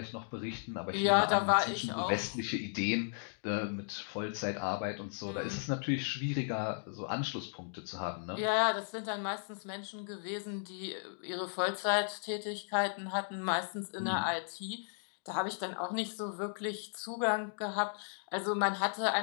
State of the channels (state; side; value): silent; right; digital silence